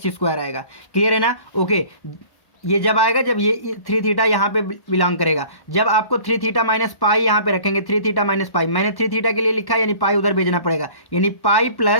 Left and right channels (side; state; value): right; late; 1.1 ms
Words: आएगा। क्लियर है ना, ओके। ये जब आएगा जब ये 3 थीटा यहाँ पे बिलोंग करेगा। जब आपको 3 थीटा - π यहाँ पे रखेंगे, 3 थीटा - π, मैंने 3 थीटा के लिए लिखा, यानी पाई उधर भेजना पड़ेगा, यानी pi